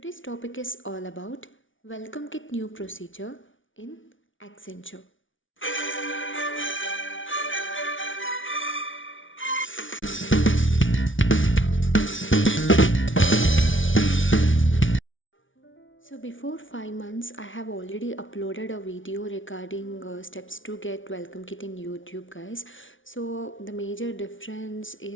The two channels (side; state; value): right; late; 0.57 ms